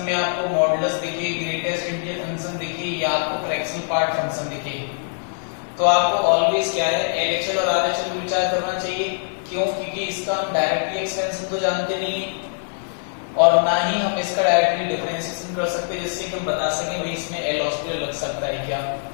में आपको मॉडुलस दिखे, ग्रेटेस्ट इंटीजर फंक्शन दिखे या आपको फ्रैक्शनल पार्ट फंक्शन दिखे, तो आपको ऑलवेज क्या है, एलएचएल और आरएचएल में विचार करना चाहिए। क्यों? क्योंकि इसका हम डायरेक्टली एक्सपेंशन तो जानते नहीं है और ना ही हम इसका डायरेक्टली डिफरेंशिएशन कर सकते जिससे कि हम बता सकें भाई इसमें एल हॉस्पिटल लग सकता है क्या।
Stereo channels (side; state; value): right; silent; 61 dB below the other